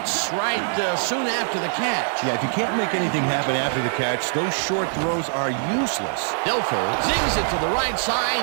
right soon after the catch. Yeah, if you can't make anything happen after the catch, those short throws are useless. Dilfer zings it to the right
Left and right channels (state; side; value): silent; left; 63 dB below the other